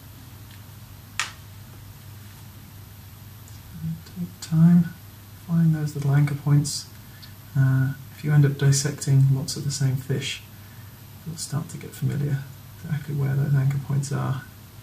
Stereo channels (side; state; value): both; identical; correlation 1.00